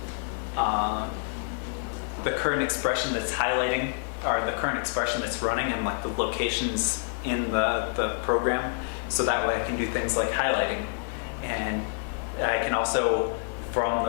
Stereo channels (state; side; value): silent; right; digital silence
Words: the current expression that's highlighting, or the current expression that's running, and like the locations in the program. So that way I can do things like highlighting. And I can also, from